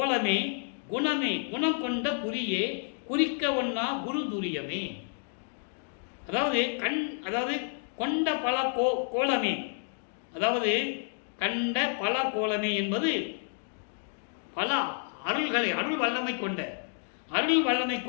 குணமே, குணம் கொண்ட குறியே, குறிக்க ஒன்னா குரு துரியமே. அதாவது கொண்ட பல கோலமே, அதாவது கண்ட பல கோலமே என்பது பல அருள்களை, அருள் வல்லமை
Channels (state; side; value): silent; right; 58 dB below the other